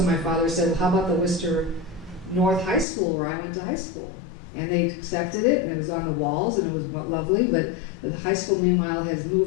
my father said, well, how about the Worcester North High School where I went to high school? And they accepted it, and it was on the walls, and it was lovely, but the high school, meanwhile, has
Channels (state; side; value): drops out; right; at 2.9 s